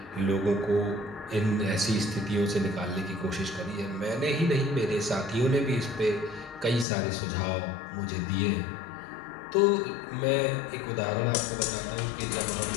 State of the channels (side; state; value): right; drops out; at 6.9 s